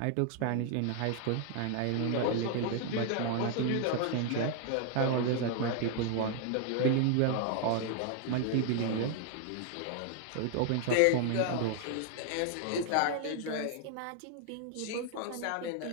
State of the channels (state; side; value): different; both; correlation 0.00